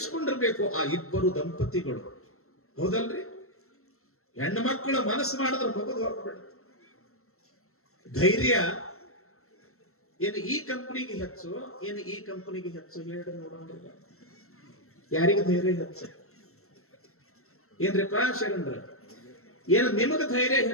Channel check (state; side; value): late; right; 0.63 ms